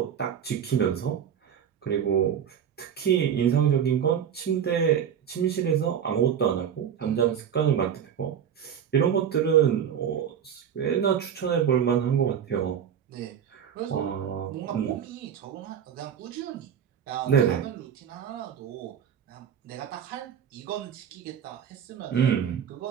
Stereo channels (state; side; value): quieter; left; 8.5 dB